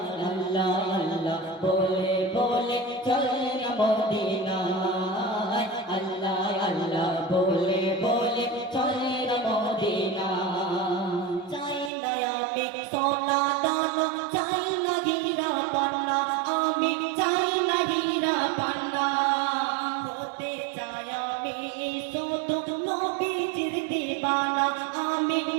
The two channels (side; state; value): left; drops out; at 11.9 s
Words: আল্লাহ আল্লাহ বলে বলে চল না মদিনায় আল্লাহ আল্লাহ বলে বলে চল না মদিনায় চাই না আমি সোনা দানা চাই না হীরা পান্না আমি চাই না হীরা পান্না হতে চাই আমি শুধু নবীজির দিবানা আমি